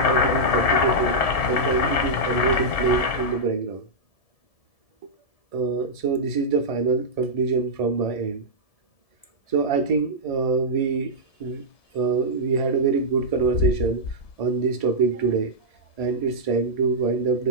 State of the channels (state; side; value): late; right; 1.7 ms